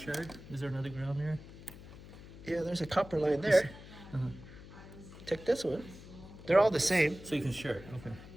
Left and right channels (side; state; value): left; noise; hum, 16 dB below the sound